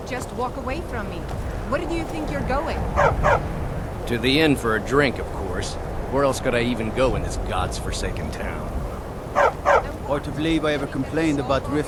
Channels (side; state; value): both; identical; correlation 1.00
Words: just walk away from me. Where do you think you're going? To the inn for a drink, of course. Where else could I even go in this god's-forsaken town? Hard to believe I ever complained about